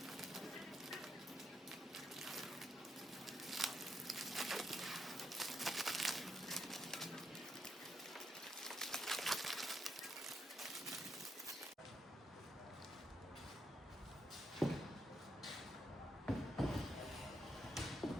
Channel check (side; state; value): both; normal; correlation 0.79